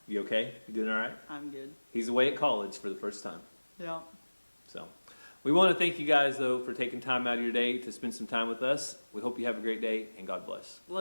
You okay? You doing all right? I'm good. He's away at college for the first time. Yeah. So we want to thank you guys, though, for taking time out of your day to spend some time with us. We hope you have a great day, and God bless.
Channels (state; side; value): inverted; both; correlation -1.00